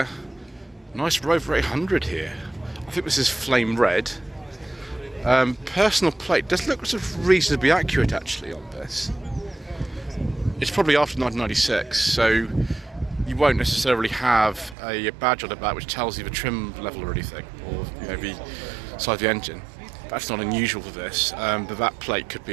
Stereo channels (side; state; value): left; drops out; at 14.8 s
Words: nice Rover 800 here. I think this is flame red. Personal plate does look sort of reasonably accurate actually on this. It's probably after 1996, so you won't necessarily have a badge on the back which tells you the trim level or anything, or the size of the engine. That's not unusual for this, but that plate could